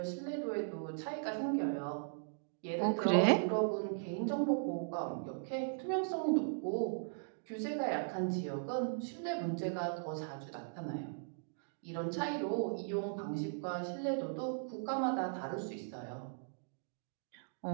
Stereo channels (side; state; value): left; silent; digital silence